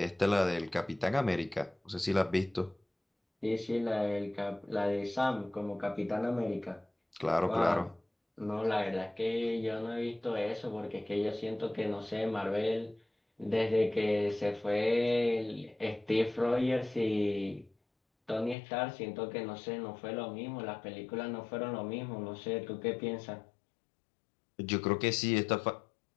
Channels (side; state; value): right; drops out; at 18.6 s